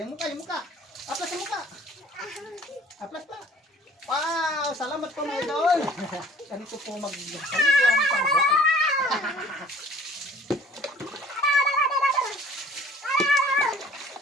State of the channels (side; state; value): both; normal; correlation 0.51